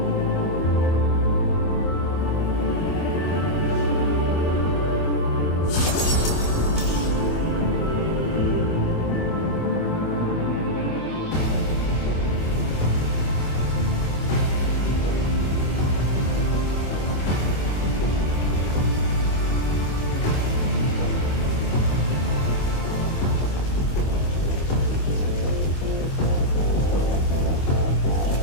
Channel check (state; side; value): late; right; 25 ms